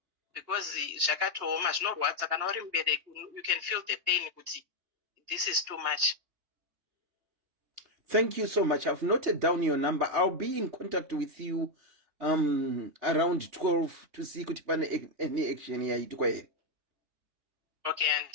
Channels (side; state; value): left; late; 3.3 ms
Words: because zvakatooma zvinorwadza kana uri mubereki, you can feel the pain kuti this is too much. Thank you so much. I've noted down your number. I'll be in contact with you around 12 to see kuti pane any action yaitwa here. Okay, and